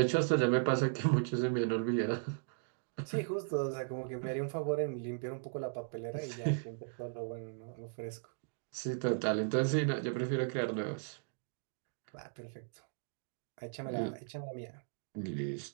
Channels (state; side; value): silent; left; digital silence